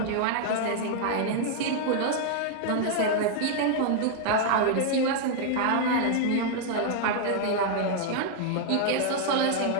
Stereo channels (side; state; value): both; different; correlation 0.00